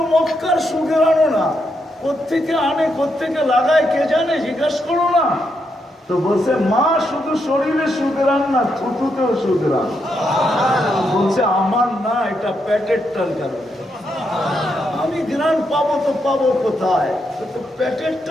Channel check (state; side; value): normal; both; correlation 0.81